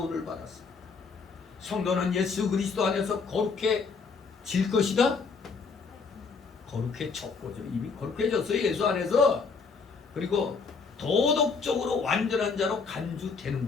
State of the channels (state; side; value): quieter; right; 5.0 dB